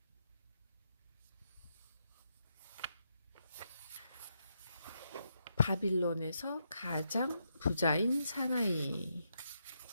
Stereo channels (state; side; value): inverted; both; correlation -0.81